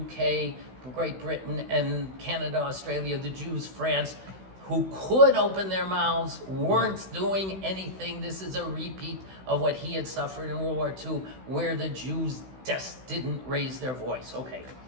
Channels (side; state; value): left; late; 16 ms